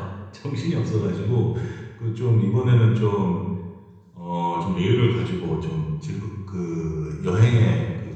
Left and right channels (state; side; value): identical; both; correlation 1.00